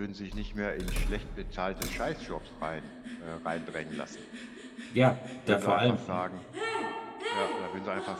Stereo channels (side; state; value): both; identical; correlation 1.00